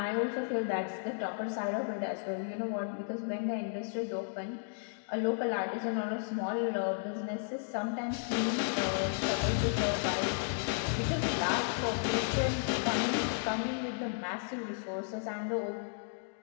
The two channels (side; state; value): right; silent; digital silence